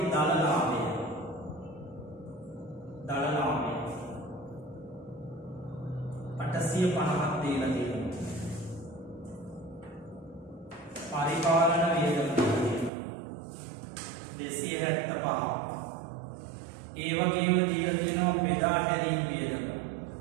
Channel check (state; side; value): drops out; left; at 12.9 s